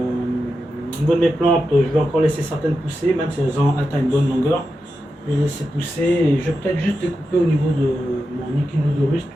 Au niveau de mes plantes, je vais encore laisser certaines pousser, même si elles ont atteint une bonne longueur. Je vais les laisser pousser et je vais peut-être juste découper au niveau de mon Echinodorus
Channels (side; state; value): both; normal; correlation 0.89